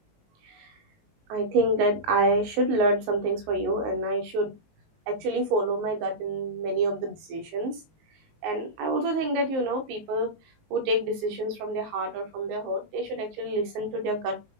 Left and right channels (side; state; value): left; late; 19 ms